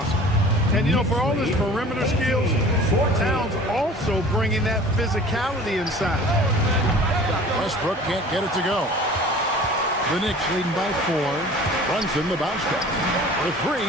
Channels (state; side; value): normal; both; correlation 0.44